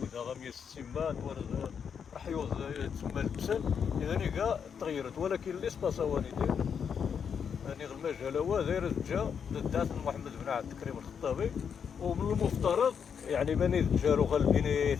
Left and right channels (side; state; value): right; quieter; 7.1 dB